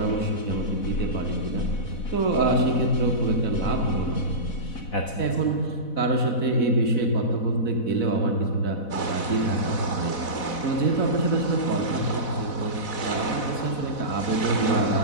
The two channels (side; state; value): right; late; 4.1 ms